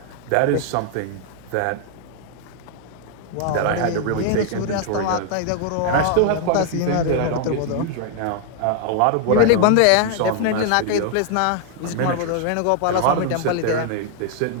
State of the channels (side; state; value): both; different; correlation 0.00